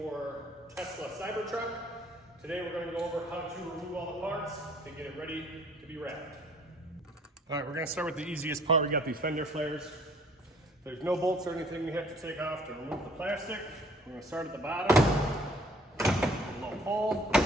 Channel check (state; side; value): normal; both; correlation 0.56